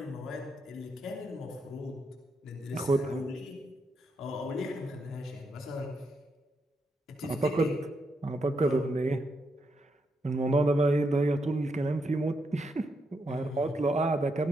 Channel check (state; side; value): normal; both; correlation 0.81